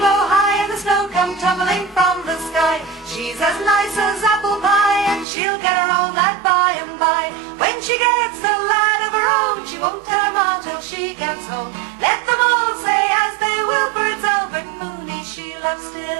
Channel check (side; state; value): left; drops out; at 5.2 s